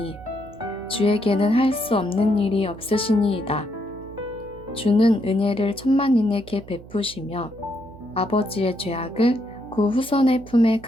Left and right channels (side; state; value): right; noise; hum, 19 dB below the sound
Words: 주에게는 할 수 없는 일이 없으시니이다. 주는 은혜를 천만인에게 베푸시며 아버지의 죄악을 그 후손의 품에